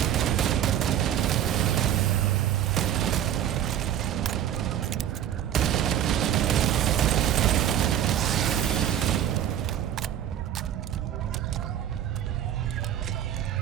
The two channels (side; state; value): left; quieter; 10.7 dB